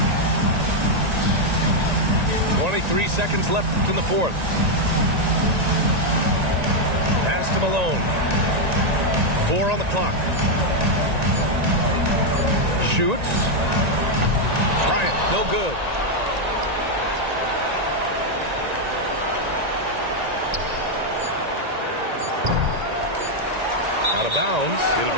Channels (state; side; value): late; left; 1.9 ms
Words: .23 seconds left in the fourth. Pass to Malone. 4 on the clock. Shoots. Bryant, no good. Out of bounds. It'll